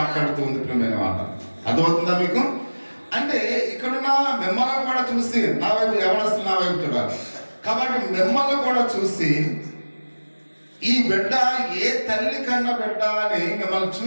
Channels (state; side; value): inverted; both; correlation -1.00